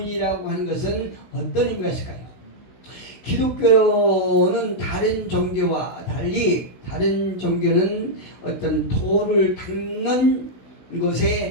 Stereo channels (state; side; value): late; right; 16 ms